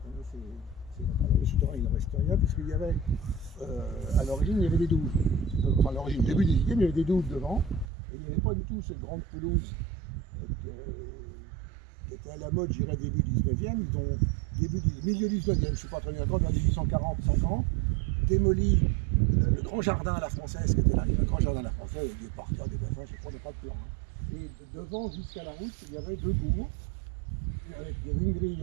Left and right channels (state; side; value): drops out; left; at 7.9 s